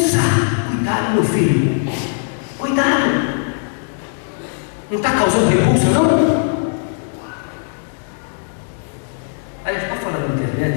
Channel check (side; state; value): right; silent; digital silence